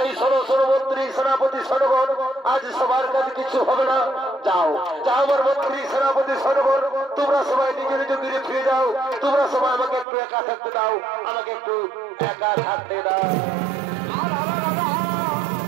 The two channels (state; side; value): drops out; left; at 10.1 s